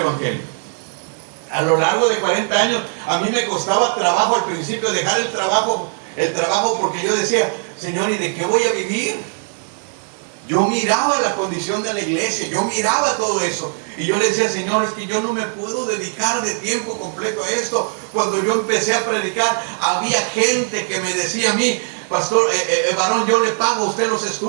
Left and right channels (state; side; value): silent; left; 56 dB below the other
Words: A lo largo de 40 años, a mí me costaba trabajo al principio dejar el trabajo porque yo decía, Señor, ¿y de qué voy a vivir? Yo miraba la condición de la iglesia, yo miraba todo eso. Y yo le decía, Señor, es que yo no me puedo dedicar de tiempo completo a esto. Cuando yo empecé a predicar, había gente que me decía a mí, pastor, varón, yo le pago a usted los